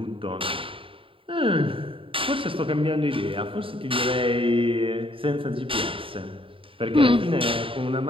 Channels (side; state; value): left; late; 0.26 ms